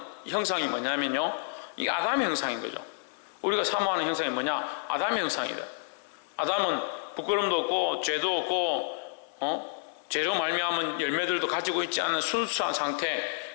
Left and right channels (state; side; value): silent; right; 58 dB below the other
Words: 형상이 뭐냐면요, 이 아담의 형상인 거죠. 우리가 사모하는 형상이 뭐냐? 아담의 형상이다. 아담은 부끄럼도 없고 죄도 없고 죄로 말미암은 열매들도 가지고 있지 않은 순수한 상태,